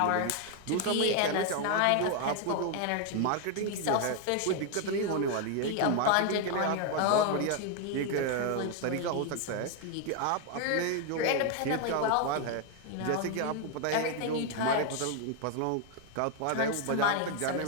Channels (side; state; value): both; different; correlation 0.01